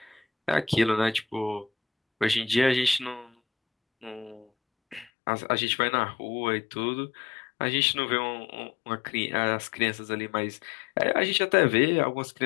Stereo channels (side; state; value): right; drops out; at 5.1 s